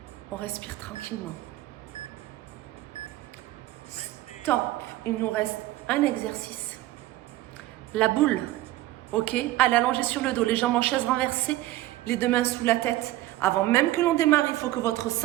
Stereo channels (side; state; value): left; quieter; 16.3 dB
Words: On respire tranquillement. Stop. Il nous reste un exercice. La boule. Ok? Allez, allongez sur le dos. Les jambes en chaise renversée. Les deux mains sous la tête. Avant même que l'on démarre, il faut que votre